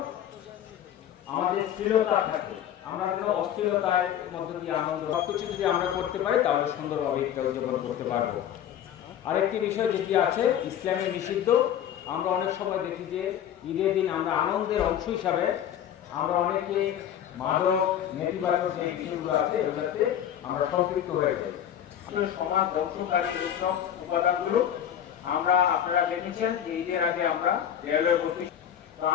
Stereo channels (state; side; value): quieter; right; 10.2 dB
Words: আমাদের স্থিরতা থাকে, আমরা যেন অস্থিরতার মধ্যে দিয়ে আনন্দ সবকিছু যদি আমরা করতে পারি তাহলে সুন্দরভাবে উদযাপন করতে পারবো। আরেকটি বিষয় যেটি আছে ইসলামে নিষিদ্ধ, আমরা অনেক সময় দেখি যে ঈদের দিন আমরা আনন্দের অংশ হিসাবে আমরা অনেকে মাদক নেতিবাচক যে বিষয়গুলো আছে এগুলোতে আমরা সম্পৃক্ত হয়ে যাই। সমাজ ধ্বংসকারী এইসব উপাদানগুলো আমরা আপনারা দেখেছেন যে ঈদের আগে আমরা রেলওয়ে অফিস, তো